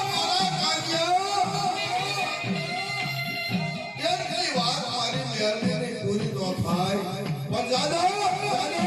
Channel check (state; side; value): identical; both; correlation 1.00